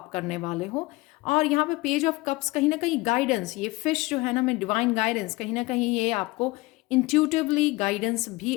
करने वाले हो। और यहाँ पे पेज ऑफ कप्स कहीं ना कहीं गाइडेंस, ये फिश जो है ना, मैं डिवाइन गाइडेंस, कहीं ना कहीं ये आपको इंट्यूटिवली गाइडेंस भी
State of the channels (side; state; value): right; quieter; 22.2 dB